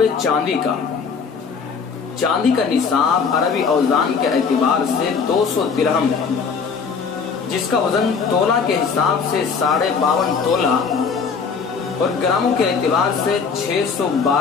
ہے چاندی کا۔ چاندی کا نصاب عربی اوزان کے اعتبار سے 200 درہم ہے، جس کا وزن تولہ کے حساب سے 52.5 تولہ اور گراموں کے اعتبار سے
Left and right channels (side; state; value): right; quieter; 5.6 dB